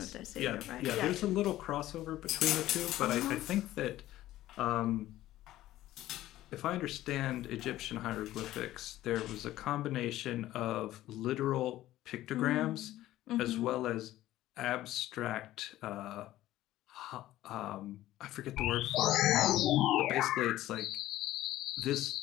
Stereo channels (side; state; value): right; quieter; 14.8 dB